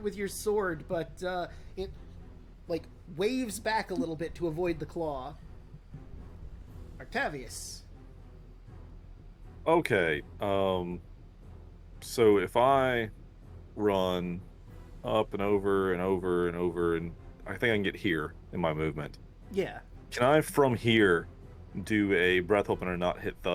with your sword, but it like waves back a little bit to avoid the claw. Octavius. Okay. So if I run up and over and over and over, and I think I can get here in my movement. Yeah. Can I, from here, do a breath opener and not hit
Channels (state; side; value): identical; both; correlation 1.00